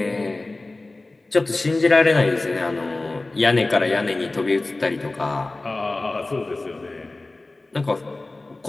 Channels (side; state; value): right; quieter; 3.1 dB